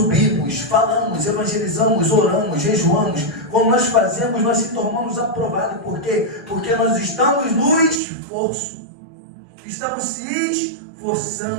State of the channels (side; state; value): left; drops out; at 8.0 s